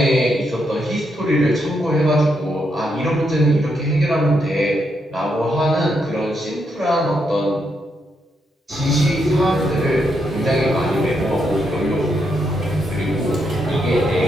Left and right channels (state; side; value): normal; both; correlation 0.80